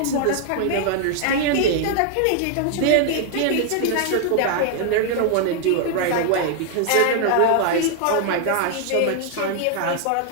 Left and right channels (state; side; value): different; both; correlation 0.00